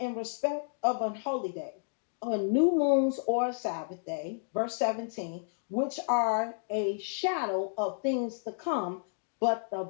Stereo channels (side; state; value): right; silent; digital silence